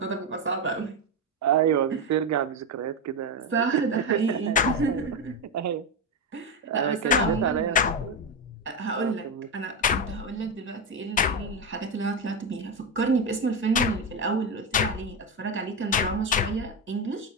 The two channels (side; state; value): both; normal; correlation 0.11